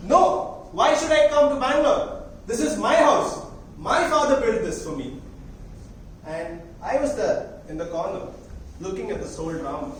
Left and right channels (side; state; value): both; identical; correlation 1.00